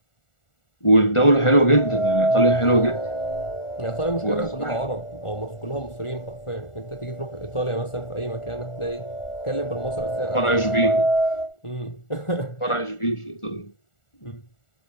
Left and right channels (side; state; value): right; late; 1.4 ms